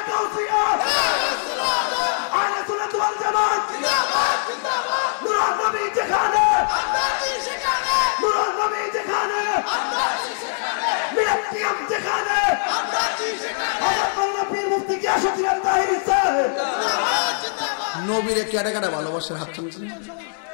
নবীরে কেটে কেটে ভালোবাসার হাত তুলছেন।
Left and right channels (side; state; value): right; silent; digital silence